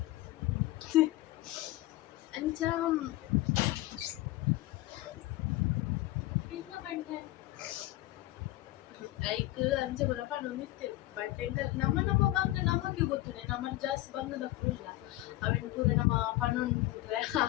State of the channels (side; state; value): right; quieter; 17.2 dB